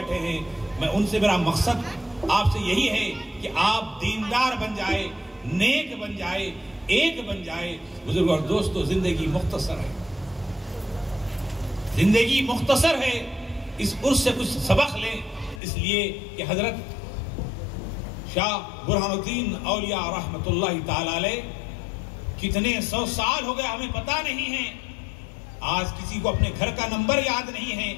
ہیں، میں ان سے میرا مقصد آپ سے یہی ہے کہ آپ دیندار بن جائے، نیک بن جائے، ایک بن جائے. بزرگ اور دوستو، زندگی مختصر ہے، زندگی مختصر ہے. اس عرص سے کچھ سبق لیں، اس لیے کہ حضرت شاہ برہان الدین اولیاء رحمت اللہ تعالی علیہ کتنے 100 سال ہو گئے ہمیں پتہ نہیں ہے. آج کسی کو اپنے گھر کا نمبر یاد نہیں ہے،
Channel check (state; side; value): drops out; right; at 15.6 s